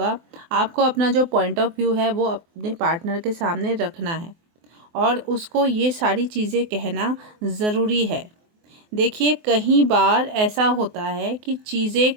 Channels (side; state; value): left; late; 24 ms